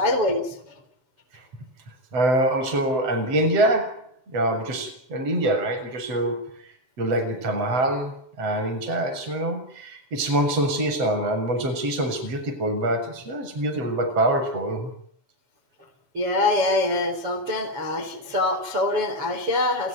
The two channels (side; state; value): left; late; 7.8 ms